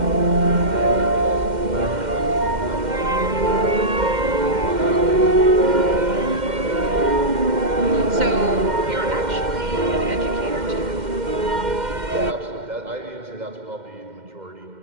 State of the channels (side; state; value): left; late; 2.1 ms